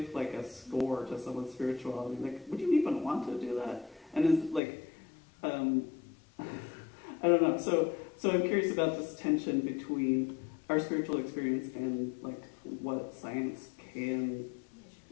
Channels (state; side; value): drops out; right; at 4.6 s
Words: like a score to someone's spirituality? Like, would you even want to do that? And is like, I don't know. So I'm curious about this tension between our spiritual experience and like what science can,